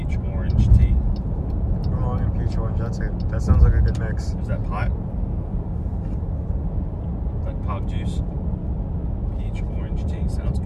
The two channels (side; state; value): both; identical; correlation 1.00